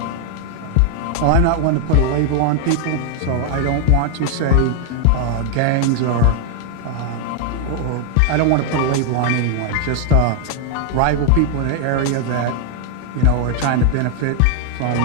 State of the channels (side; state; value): both; different; correlation 0.00